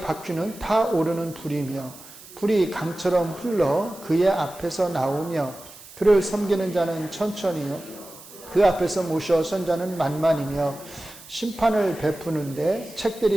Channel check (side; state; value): right; noise; hiss, 19 dB below the sound